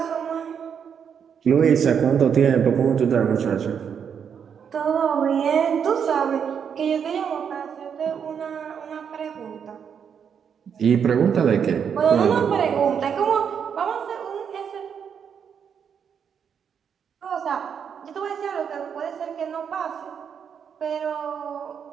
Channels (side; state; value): left; quieter; 7.4 dB